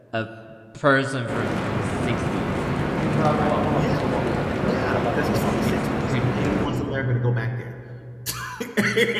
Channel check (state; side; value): identical; both; correlation 1.00